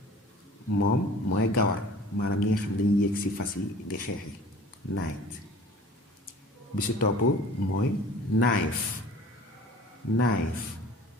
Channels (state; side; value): normal; both; correlation 0.45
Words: moom mooy gawar maanaam ñi nga xam dañuy yéeg ci fas yi di xeex yi night. bi ci topp mooy